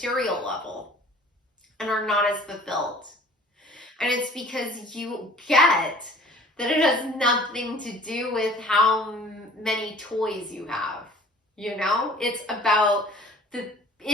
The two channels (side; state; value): both; normal; correlation 0.49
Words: level and are not as fulfilled. And it's because you get that it has nothing to do with how many toys you have. You know, it's about the